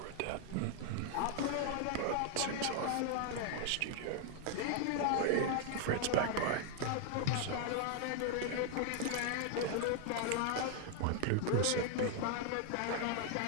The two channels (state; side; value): different; both; correlation 0.00